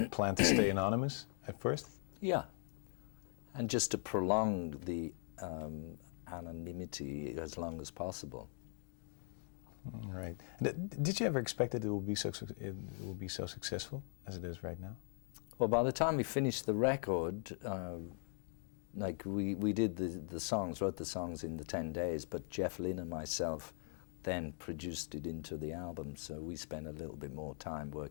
plan to stay anonymous at first? Yeah. And just to prolong the anonymity as long as possible. Right. Did you ever expect that it will be so successful as it is right now? Well, by the time we finished the record, like we did the songs, wrote the songs in the 10 days, but Jeff Lynne and myself then produced it into the album, so we spent a little bit more time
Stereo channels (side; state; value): right; silent; 51 dB below the other